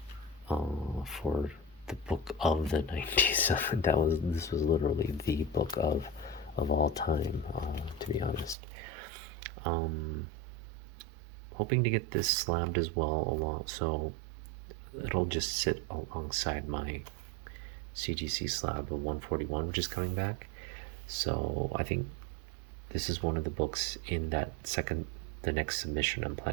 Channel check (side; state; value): left; drops out; at 8.6 s